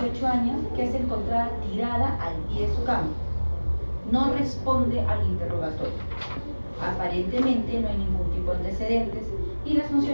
años que es encontrada tirada al pie de su cama. No responde al interrogatorio. Aparentemente no hay ningún tipo de antecedentes y las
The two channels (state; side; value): inverted; both; correlation -1.00